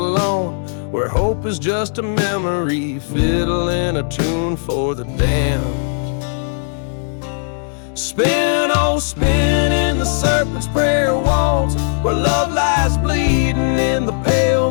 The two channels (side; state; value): right; silent; 68 dB below the other